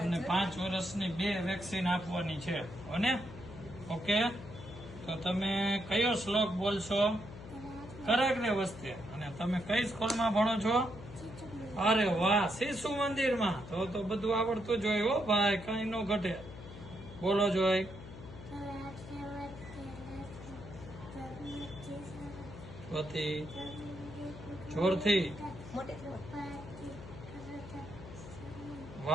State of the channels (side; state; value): left; noise; hum, 14 dB below the sound